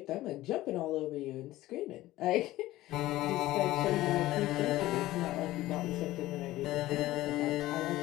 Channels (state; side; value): quieter; right; 16.4 dB